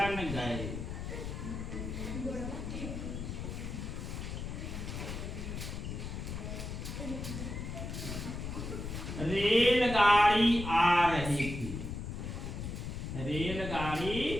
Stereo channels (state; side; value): noise; left; rumble, 6 dB below the sound